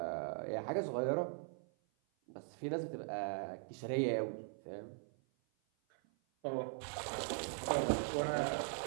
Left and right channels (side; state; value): left; silent; 51 dB below the other